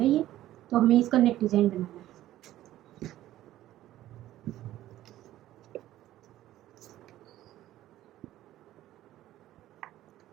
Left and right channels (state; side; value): quieter; left; 14.1 dB